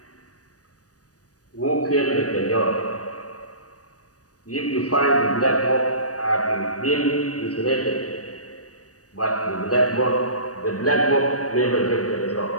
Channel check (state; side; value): late; right; 0.67 ms